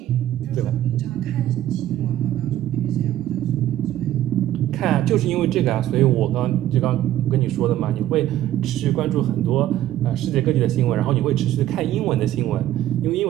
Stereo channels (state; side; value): quieter; left; 13.1 dB